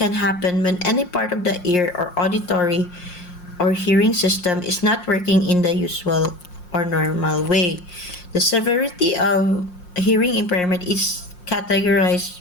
happen when any part of the ear or auditory or hearing system is not working in the usual or normal way. The severity of hearing impairment is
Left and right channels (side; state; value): right; late; 5.6 ms